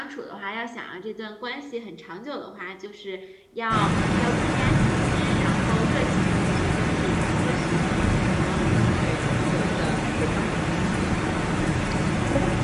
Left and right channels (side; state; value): both; identical; correlation 1.00